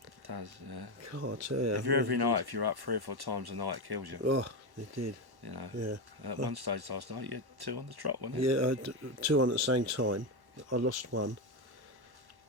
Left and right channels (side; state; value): left; late; 1.1 ms